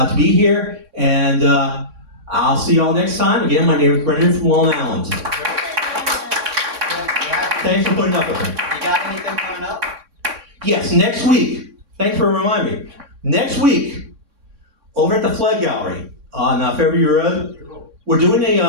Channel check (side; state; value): left; late; 3.6 ms